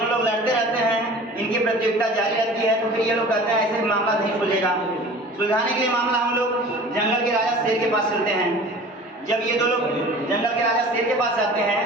लोग लड़ते रहते हैं, इनकी प्रतियोगिता जारी रहती है। तो फिर ये लोग कहते हैं ऐसे मामला नहीं सुलझेगा। सुलझाने के लिए मामला हम लोग जंगल के राजा शेर के पास चलते हैं। जब ये दो लोग जंगल के राजा शेर के पास जाते हैं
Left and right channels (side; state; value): both; normal; correlation 0.42